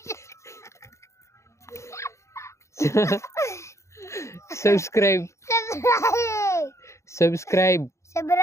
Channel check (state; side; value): late; right; 0.14 ms